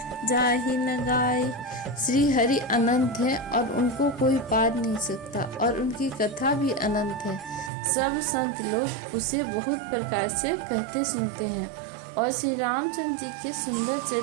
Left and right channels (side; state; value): left; drops out; at 7.7 s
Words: जाहि न गाए। श्री हरि अनंत है और उनको कोई पार नहीं सकता और उनकी कथा भी अनंत है। सब संत लोग उसे बहुत प्रकार से कहते सुनते हैं और श्री रामचंद्र जी के सुंदर